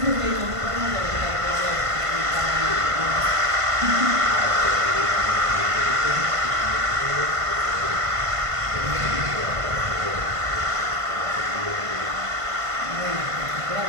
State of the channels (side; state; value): left; late; 1.5 ms